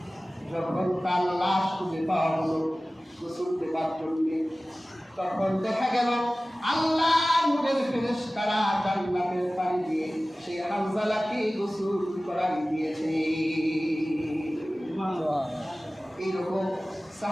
যখন তার লাশ খুঁজে পাওয়া হলো গোসল দেবার জন্য, তখন দেখা গেল আল্লাহ নূরের ফেরেশতারা জান্নাতের পানি দিয়ে সেই হামজালাকে গোসল করাই দিয়েছে। এইরকম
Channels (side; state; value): both; normal; correlation 0.97